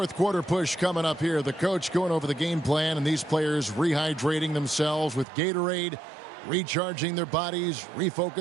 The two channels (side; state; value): left; drops out; at 5.2 s